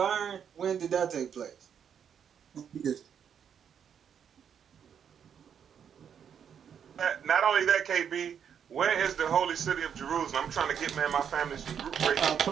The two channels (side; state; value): left; quieter; 8.0 dB